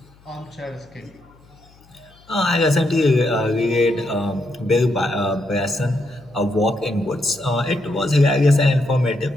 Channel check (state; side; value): noise; left; hum, 28 dB below the sound